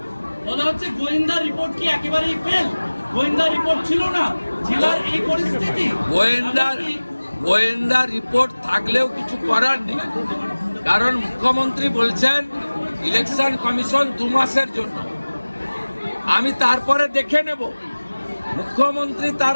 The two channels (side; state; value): both; inverted; correlation -1.00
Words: বলা হচ্ছে গোয়েন্দা রিপোর্ট কি একেবারেই ফেল? গোয়েন্দা রিপোর্ট ছিল না, জেলার এই পরিস্থিতি। গোয়েন্দা রিপোর্ট থাকলেও কিছু করার নেই, কারণ মুখ্যমন্ত্রী বলছেন ইলেকশন কমিশন 2 মাসের জন্য। আমি তারপরে দেখে নেব। মুখ্যমন্ত্রী তার